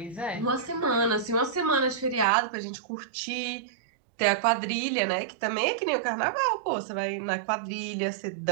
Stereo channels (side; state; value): left; drops out; at 2.2 s